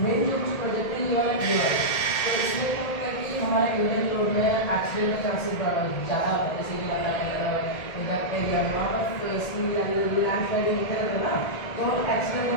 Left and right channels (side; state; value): right; late; 1.8 ms